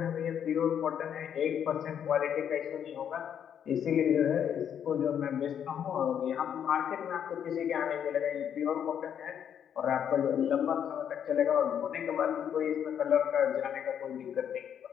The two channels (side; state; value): right; quieter; 8.8 dB